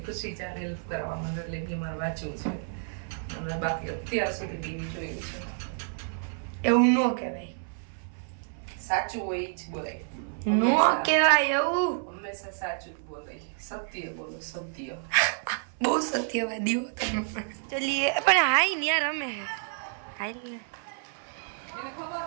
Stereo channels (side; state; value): left; silent; 58 dB below the other